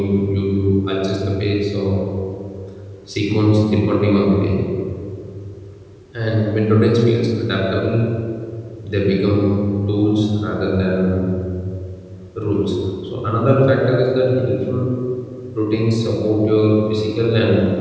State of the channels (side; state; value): both; identical; correlation 1.00